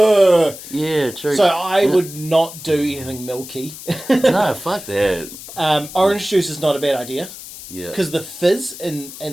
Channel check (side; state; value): left; noise; hiss, 14 dB below the sound